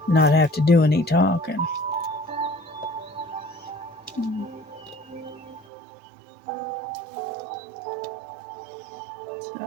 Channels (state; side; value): drops out; left; at 5.7 s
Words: not have to do any talking.